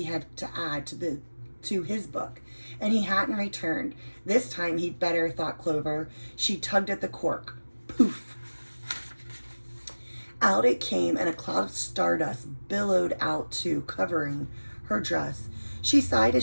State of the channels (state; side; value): inverted; both; correlation -1.00